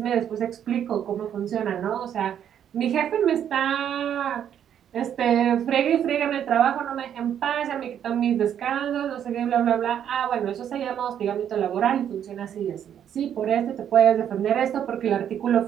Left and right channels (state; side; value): quieter; left; 9.4 dB